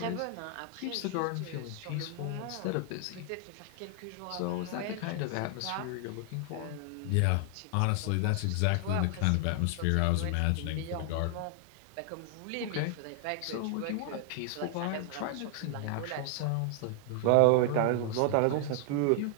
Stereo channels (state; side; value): different; both; correlation 0.00